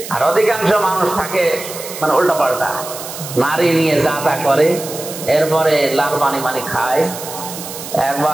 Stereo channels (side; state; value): right; noise; hiss, 10 dB below the sound